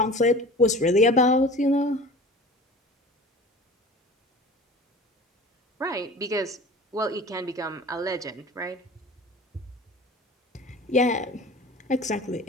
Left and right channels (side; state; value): both; normal; correlation 0.40